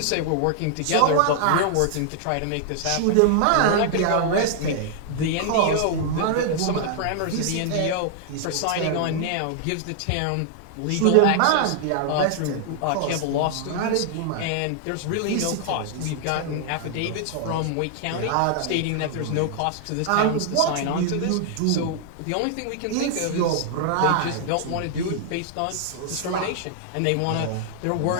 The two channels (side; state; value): both; different; correlation 0.00